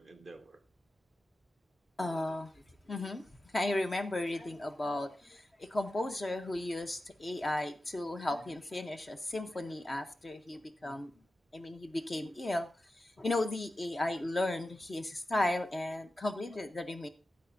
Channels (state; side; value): normal; both; correlation 0.93